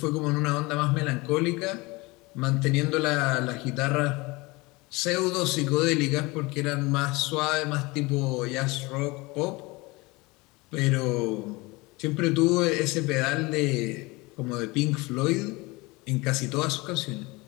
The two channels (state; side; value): quieter; right; 23.9 dB